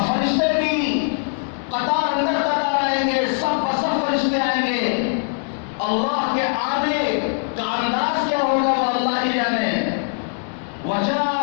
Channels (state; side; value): silent; right; digital silence